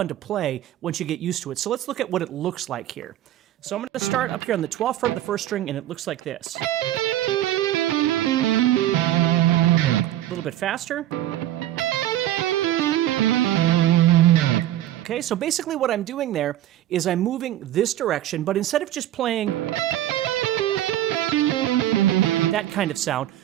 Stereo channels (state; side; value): quieter; left; 13.1 dB